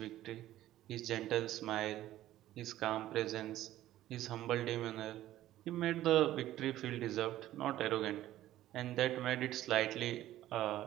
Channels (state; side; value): quieter; left; 14.0 dB